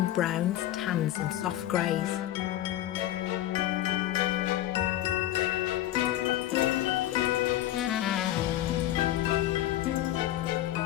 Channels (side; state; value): right; quieter; 13.8 dB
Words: browns, tans and soft greys.